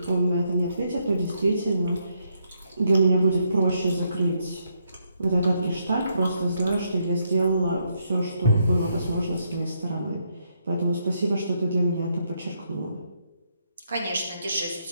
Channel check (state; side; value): inverted; both; correlation -0.77